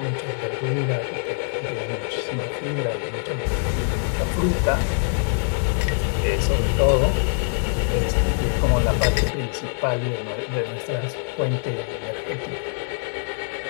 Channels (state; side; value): silent; right; 63 dB below the other